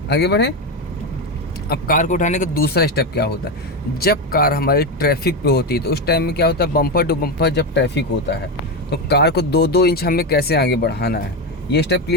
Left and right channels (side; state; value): both; normal; correlation 0.13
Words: आगे बढ़े। अब कार को उठाने का दूसरा स्टेप क्या होता है, जब कार हमारी ट्रैफिक पे होती है तो उस टाइम में क्या होता है, बम्पर टू बम्पर जब ट्रैफिक होता है तो कार को 2-2 इंच हमें कैसे आगे बढ़ाना है, ये स्टेप